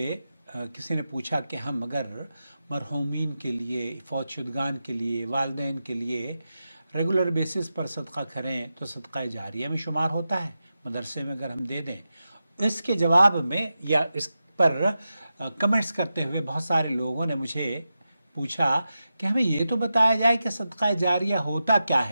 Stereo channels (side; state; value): both; inverted; correlation -0.91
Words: किसी ने पूछा कि हम अगर मरहूमीन के लिए, फ़ौतशुदगान के लिए, वालिदैन के लिए रेगुलर बेसिस पर सदका करें तो सदका जारिया में शुमार होता है, मदरसे में अगर हम दे दें। इसके जवाब में या इस पर कमेंट्स करते हुए बहुत सारे लोगों ने मुझे पूछा कि हमें ये तो बताया जाए कि सदका जारिया होता क्या